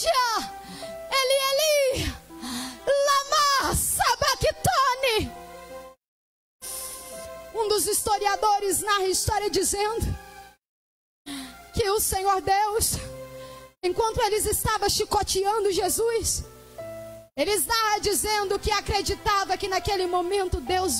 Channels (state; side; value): identical; both; correlation 1.00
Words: Eli, lama sabachthani. Um dos historiadores narra a história dizendo que o Senhor Deus, enquanto eles estavam chicoteando Jesus, eles narram dizendo que acreditava que naquele momento Deus